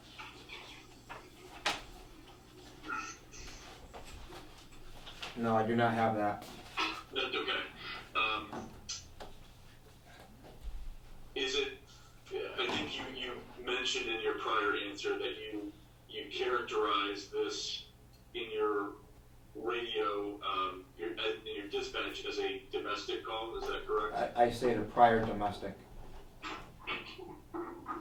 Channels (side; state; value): both; identical; correlation 1.00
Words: No, I do not have that. That's okay. Is it? I think you mentioned in your prior answer that you characterized this in your radio, in your dispatch as a domestic call. Is that correct? I say the prior domestic.